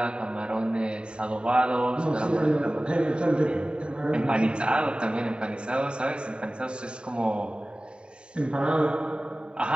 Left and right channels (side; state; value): left; late; 0.051 ms